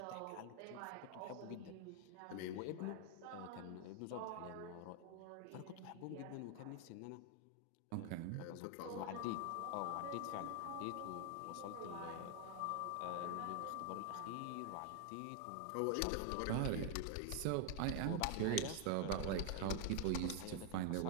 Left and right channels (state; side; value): different; both; correlation 0.00